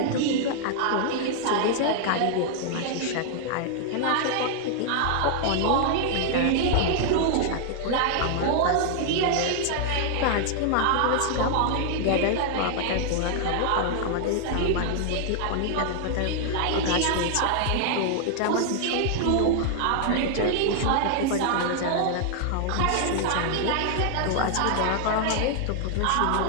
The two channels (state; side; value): different; both; correlation -0.01